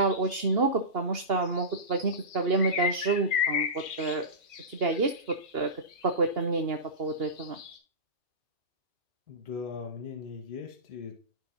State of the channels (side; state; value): left; late; 2.8 ms